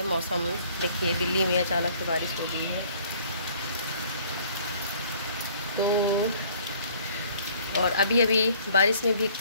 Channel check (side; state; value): both; inverted; correlation -0.57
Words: मौसम देखिए, दिल्ली में अचानक से बारिश हो गई है। तो और अभी अभी बारिश में